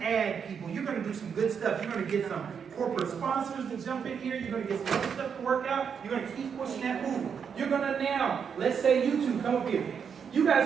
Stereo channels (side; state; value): left; quieter; 6.9 dB